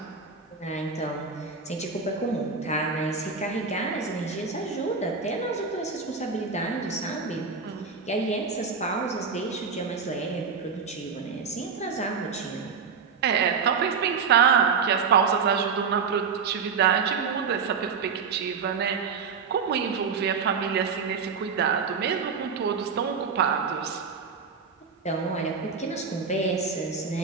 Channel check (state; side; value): quieter; left; 5.7 dB